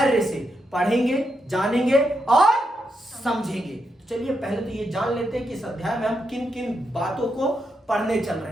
से पढ़ेंगे, जानेंगे और समझेंगे। तो चलिए पहले तो ये जान लेते हैं कि इस अध्याय में हम किन किन बातों को पढ़ने चल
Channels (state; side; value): normal; both; correlation 0.83